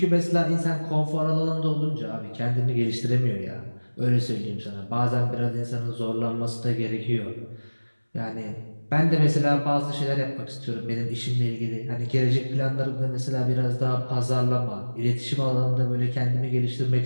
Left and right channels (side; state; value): both; inverted; correlation -1.00